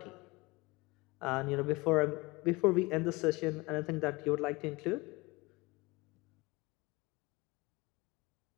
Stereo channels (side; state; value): right; quieter; 23.8 dB